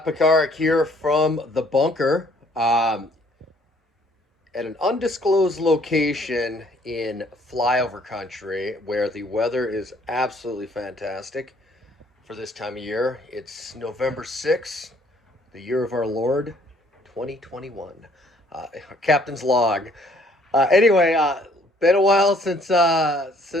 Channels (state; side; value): normal; both; correlation 0.62